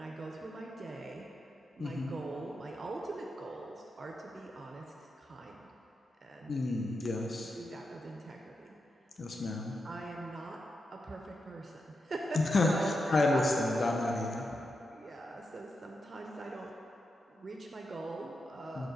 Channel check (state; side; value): normal; both; correlation 0.87